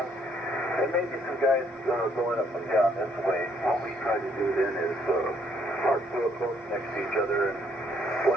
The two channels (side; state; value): both; normal; correlation 0.68